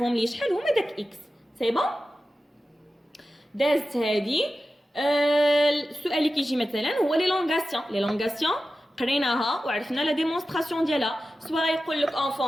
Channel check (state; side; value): normal; both; correlation 0.93